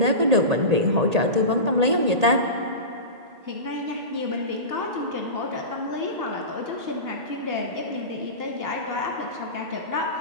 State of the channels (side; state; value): left; late; 1.8 ms